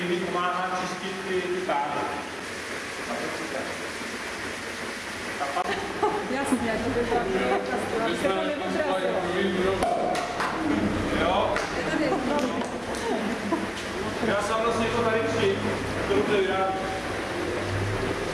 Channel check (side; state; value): both; identical; correlation 1.00